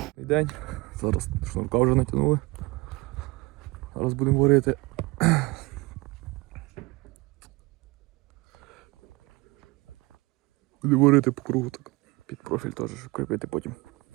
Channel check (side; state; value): left; quieter; 23.8 dB